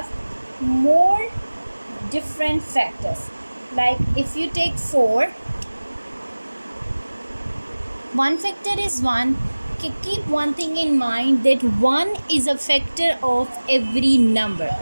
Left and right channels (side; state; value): both; inverted; correlation -1.00